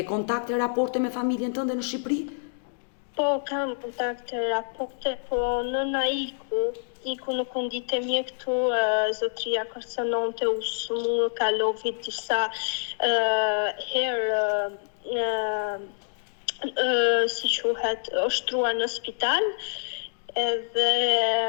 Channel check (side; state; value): right; silent; digital silence